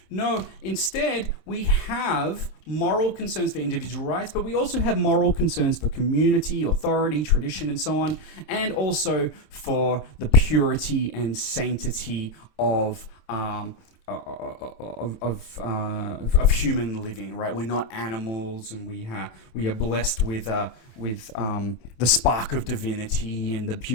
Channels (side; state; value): right; late; 27 ms